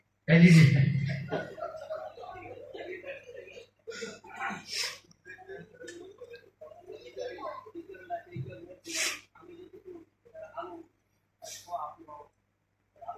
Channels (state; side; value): identical; both; correlation 1.00